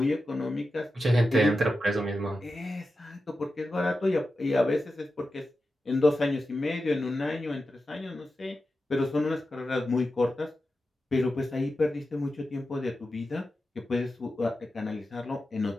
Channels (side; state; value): both; normal; correlation 0.91